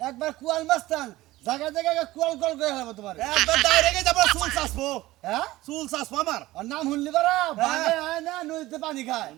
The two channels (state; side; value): quieter; left; 17.6 dB